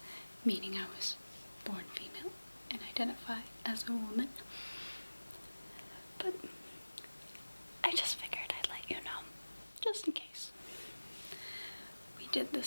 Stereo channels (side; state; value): both; inverted; correlation -1.00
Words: meaning I was born female and identify as a woman. But I just figured I'd let you know, just in case. We did